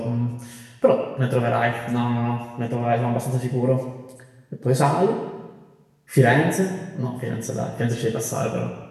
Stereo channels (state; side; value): identical; both; correlation 1.00